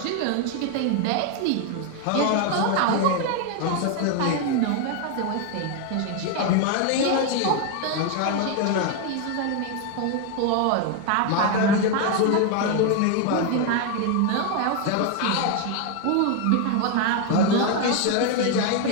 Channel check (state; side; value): different; both; correlation 0.01